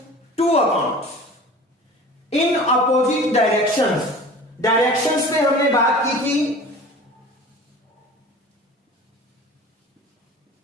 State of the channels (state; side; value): normal; both; correlation 0.40